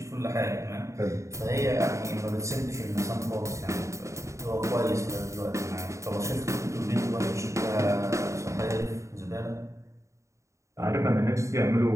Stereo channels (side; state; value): left; late; 0.14 ms